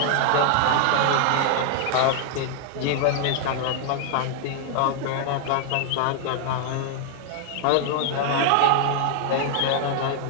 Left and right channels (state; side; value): different; both; correlation 0.00